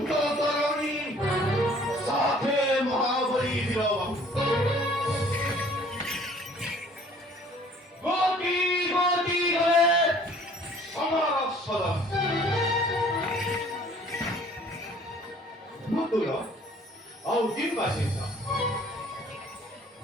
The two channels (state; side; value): normal; both; correlation 0.54